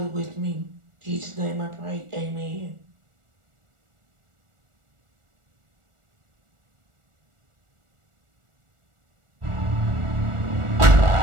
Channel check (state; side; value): late; left; 1.4 ms